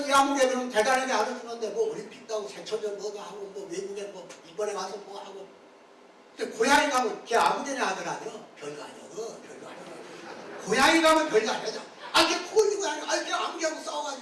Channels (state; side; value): identical; both; correlation 1.00